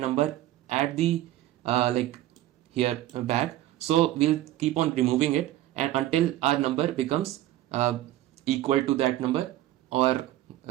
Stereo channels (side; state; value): left; quieter; 14.4 dB